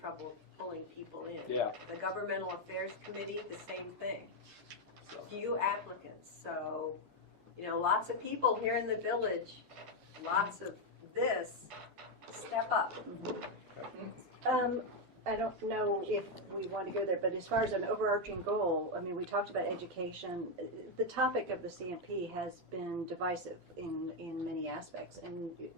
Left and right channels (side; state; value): left; late; 12 ms